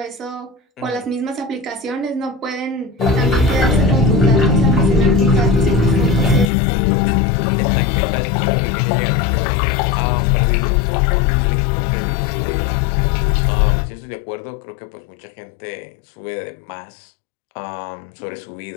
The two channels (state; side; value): drops out; right; at 6.5 s